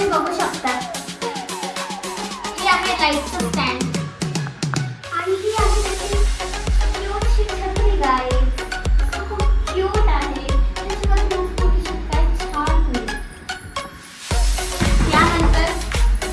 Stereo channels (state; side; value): identical; both; correlation 1.00